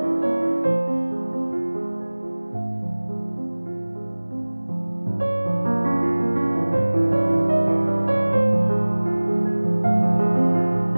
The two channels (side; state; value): both; inverted; correlation -1.00